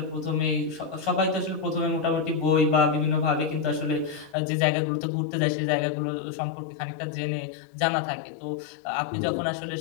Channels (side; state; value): right; drops out; at 4.4 s